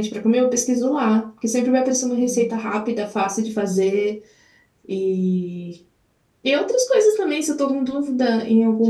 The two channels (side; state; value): both; identical; correlation 1.00